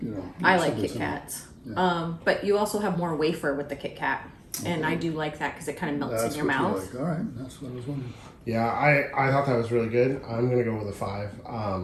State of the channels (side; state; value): both; identical; correlation 1.00